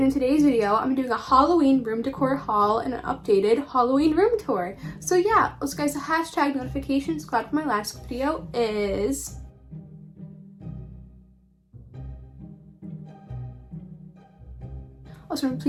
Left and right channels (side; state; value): both; identical; correlation 1.00